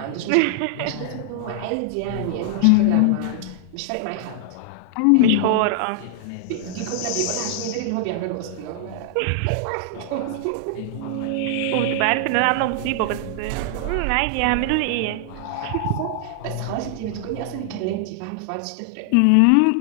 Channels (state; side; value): different; both; correlation -0.01